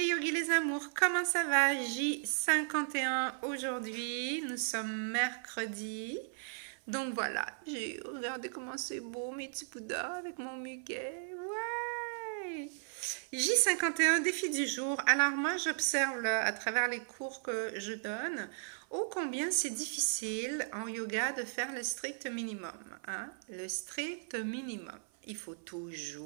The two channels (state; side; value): silent; left; 54 dB below the other